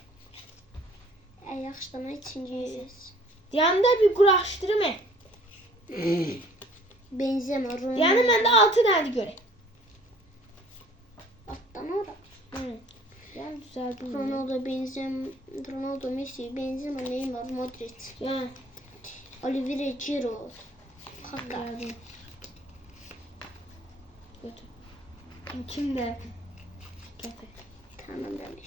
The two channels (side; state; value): both; normal; correlation 0.54